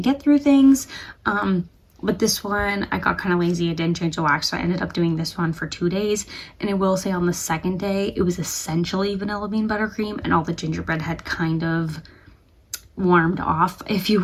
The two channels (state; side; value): identical; both; correlation 1.00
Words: get through things. But this one, I got kind of lazy. I didn't change the wax, so I ended up doing this one for 2 days. And I will say on the second day, it was essentially vanilla bean buttercream, and all the gingerbread had kind of warmed off, if you